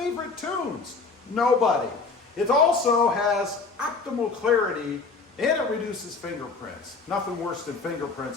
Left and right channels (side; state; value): right; quieter; 4.3 dB